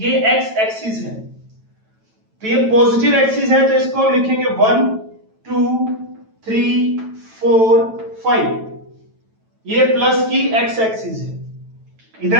एक्स एक्सिस है तो ये पॉजिटिव एक्सिस है, तो इसको हम लिखेंगे 1 2 3 4 5। ये प्लस की एक्स एक्सिस है।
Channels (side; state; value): left; late; 9.1 ms